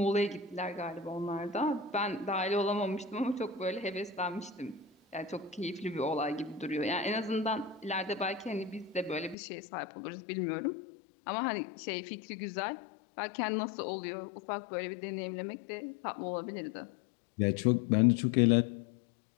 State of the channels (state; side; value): drops out; right; at 9.3 s